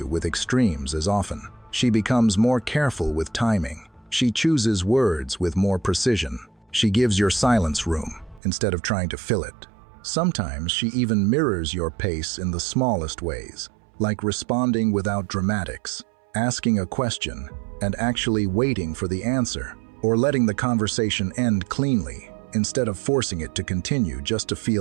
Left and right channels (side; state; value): left; drops out; at 8.4 s